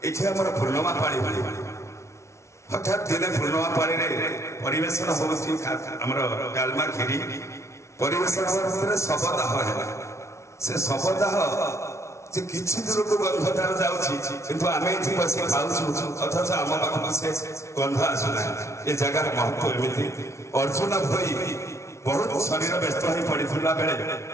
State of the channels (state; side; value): late; right; 0.13 ms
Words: ଏଠି ଆମର ପୂର୍ଣ୍ଣମା ପାଳି ଭଳି। ହଠାତ୍ ଦିନେ ପୂର୍ଣ୍ଣମା ପାଳିରେ ପରିବେଷଣ ହେଉଛି ଆମର ଡାଲମା କ୍ଷୀରି ପରିବେଷଣ ଭିତରେ ଶବଦାହ ହେଲା। ସେ ଶବଦାହ ଯେ କିଛି ଦୂରକୁ ଗନ୍ଧ ତାର ଯାଉଛି, କିନ୍ତୁ ଆମେ ଏଠି ବସି ଖାଉଛୁ ଅଥଚ ଆମ ପାଖକୁ ସେ ଗନ୍ଧ ଆସୁନାହିଁ। ଏ ଜାଗାର ମହତ୍ଵ ଏମିତି। ଅର୍ଜୁନ ଭୋଇ ବହୁତ ଶରୀର ବ୍ୟସ୍ତ ହୋଇ ପଡ଼ିଥିଲା ବେଳେ